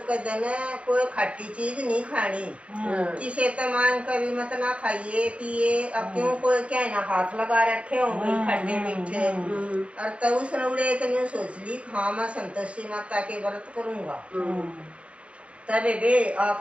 का दिन कोई खट्टी चीज नहीं खानी। किसे तो मान कभी मत ना खाइए पिए। अब क्यों कोई क्या ना हाथ लगा रखे होंगे खट्टे मीठे। और तब उसने उड़े तो न्यू सोच ली हाँ मैं संतोषी माता के व्रत करूंगा। तबे बे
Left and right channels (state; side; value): late; left; 0.061 ms